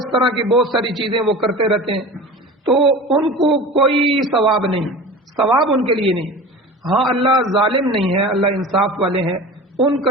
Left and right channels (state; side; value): normal; both; correlation 0.35